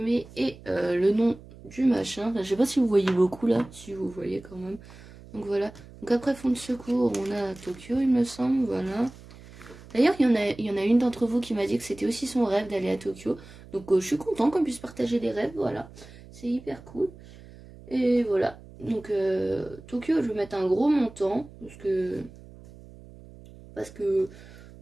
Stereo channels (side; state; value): right; noise; hum, 19 dB below the sound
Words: et le nom du machin. Enfin, je sais pas si vous voyez beaucoup là, si vous voyez quand même. Donc voilà. Donc après fonds de secours on a Tokyo il me semble, voilà. D'ailleurs, il y en a une d'entre vous qui m'a dit que c'était aussi son rêve d'aller à Tokyo. Donc, je suis contente qu'on puisse partager des rêves, voilà. C'est hyper cool. Et voilà. Donc, Tokyo, je vais mettre un gros montant. Parce que